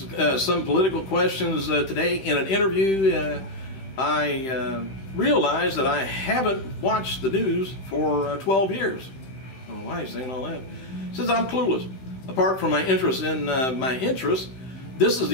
some political questions today in an interview. I realized that I haven't watched the news for 12 years. I don't know why he's saying all that. Says I'm clueless. Apart from my interest in my interests, this is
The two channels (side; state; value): right; late; 15 ms